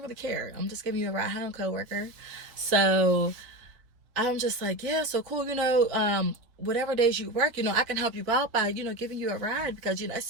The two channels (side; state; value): left; late; 4.1 ms